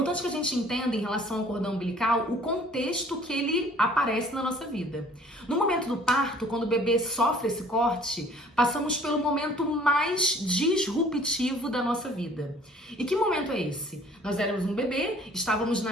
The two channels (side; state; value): both; normal; correlation 0.54